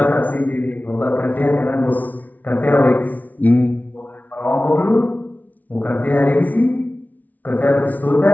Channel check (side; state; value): right; late; 0.076 ms